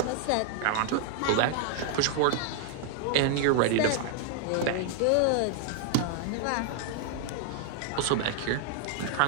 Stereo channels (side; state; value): both; different; correlation 0.00